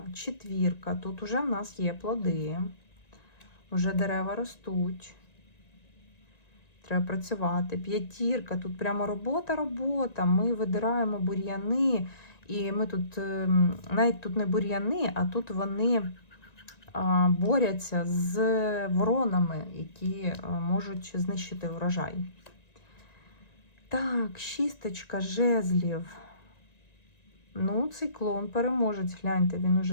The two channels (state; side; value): late; right; 1.9 ms